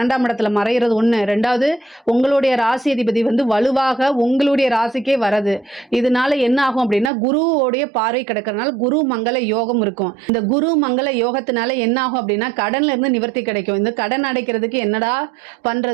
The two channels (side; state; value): left; drops out; at 7.1 s